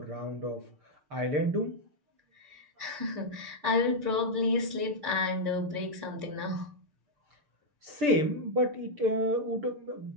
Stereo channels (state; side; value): late; left; 6.7 ms